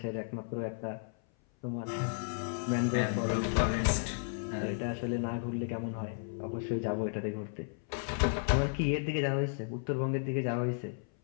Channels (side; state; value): right; silent; 55 dB below the other